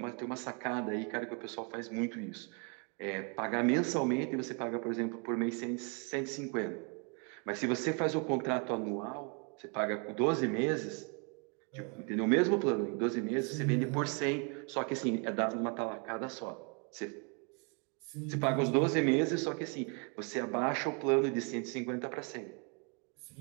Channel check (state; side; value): quieter; left; 35.5 dB